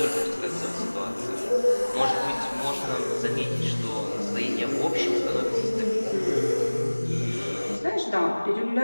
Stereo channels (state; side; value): inverted; both; correlation -1.00